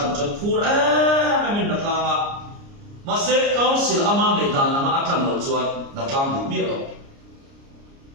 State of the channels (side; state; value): left; late; 29 ms